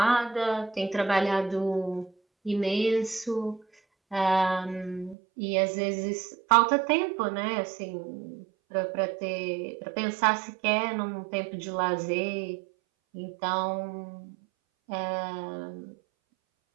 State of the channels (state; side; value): drops out; left; at 5.2 s